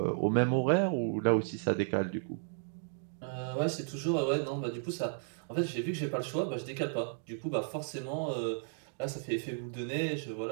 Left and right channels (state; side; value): silent; left; digital silence